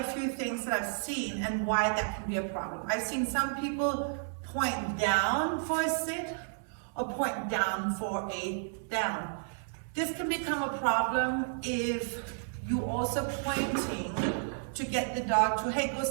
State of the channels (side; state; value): left; silent; digital silence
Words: few things that I've seen and why that can be a problem. I've seen some people point down for a sit or point down for a down. This can become a problem if you also pointing to get the dog to, hey, go